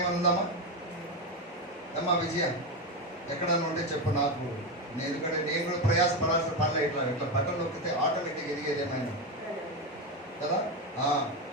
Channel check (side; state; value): both; normal; correlation 0.13